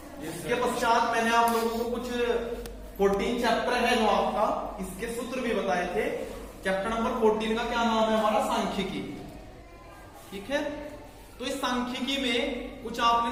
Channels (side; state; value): both; identical; correlation 1.00